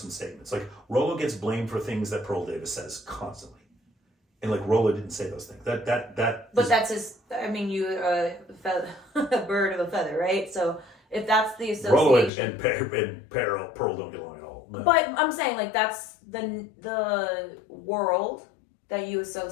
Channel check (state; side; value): drops out; right; at 12.3 s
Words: statements. Like Rollo gets blamed for things that Pearl Davis says constantly. And like Rollo didn't say those things. But that's his, I mean, you a bird of a feather, right? So if that's the association. Rollo and Pearl don't get along at all. No. But I'm saying like that's the world that you